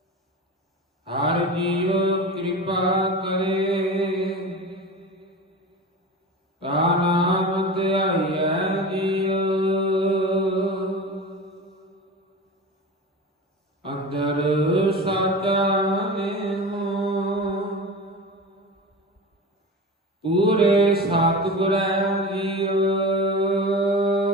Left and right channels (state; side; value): normal; both; correlation 0.30